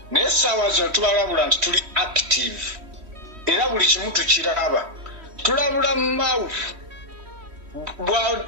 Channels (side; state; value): left; late; 3.1 ms